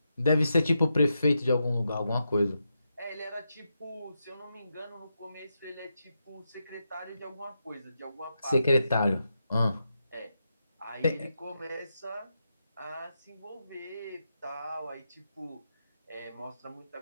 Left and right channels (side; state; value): both; inverted; correlation -0.86